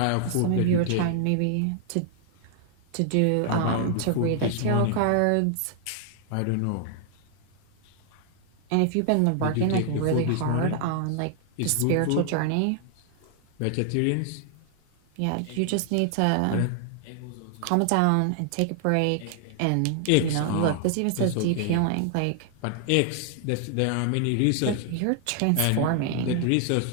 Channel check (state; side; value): different; both; correlation 0.00